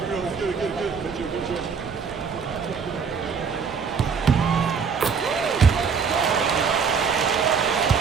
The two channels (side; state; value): left; quieter; 6.0 dB